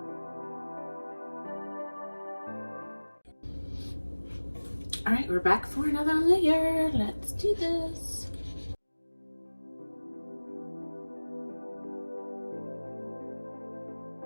All right, we're back for another layer. Let's do this.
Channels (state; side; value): inverted; both; correlation -1.00